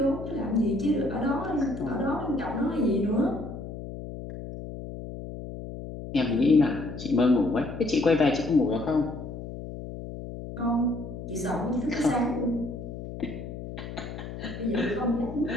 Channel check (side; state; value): left; noise; hum, 9 dB below the sound